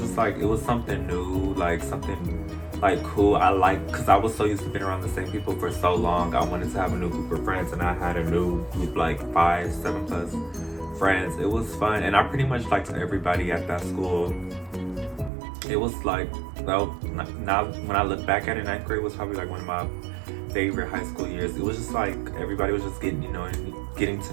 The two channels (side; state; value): left; drops out; at 15.3 s